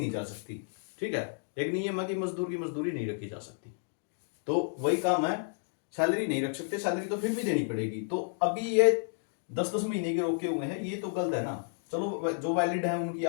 जा सकती, ठीक है। एक नियम है कि मजदूर की मजदूरी नहीं रखी जा सकती, तो वही काम है, सैलरी नहीं रख सकते, सैलरी तो फिर भी देनी पड़ेगी। तो अभी ये 10-10 महीने के रोके हुए हैं, ये तो गलत है ना। चलो जो वैलिड है उनकी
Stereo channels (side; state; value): right; silent; digital silence